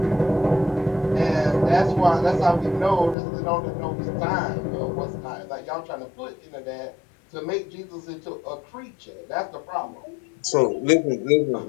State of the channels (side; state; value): right; drops out; at 3.2 s